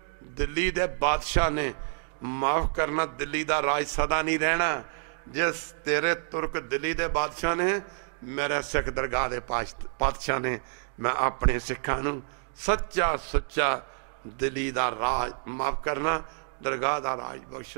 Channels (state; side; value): silent; left; digital silence